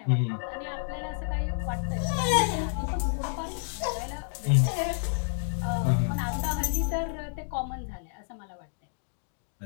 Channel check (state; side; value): silent; right; digital silence